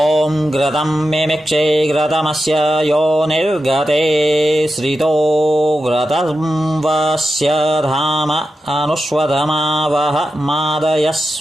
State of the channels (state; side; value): normal; both; correlation 0.90